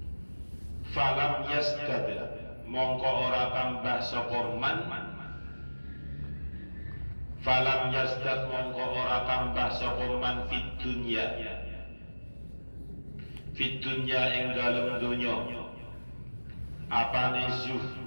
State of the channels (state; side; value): inverted; both; correlation -1.00